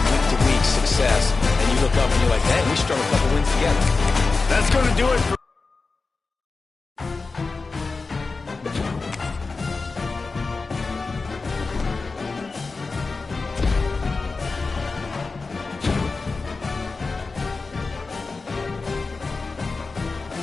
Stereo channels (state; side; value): quieter; right; 4.0 dB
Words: week-to-week success. And you look up and you're like, man, we strung a couple wins together. That's going to do it for